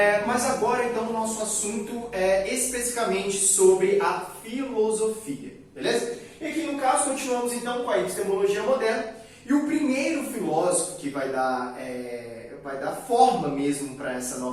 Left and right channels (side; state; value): both; identical; correlation 1.00